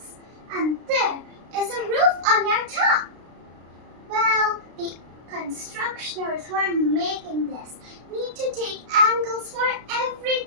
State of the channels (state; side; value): late; left; 33 ms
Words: and there is a roof on your top. Well, the constructioners who are making this need to take angles for